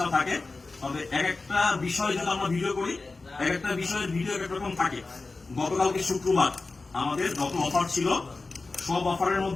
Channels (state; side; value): quieter; right; 3.6 dB